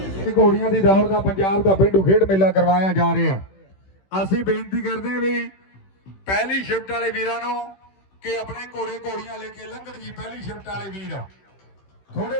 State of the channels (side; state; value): right; late; 16 ms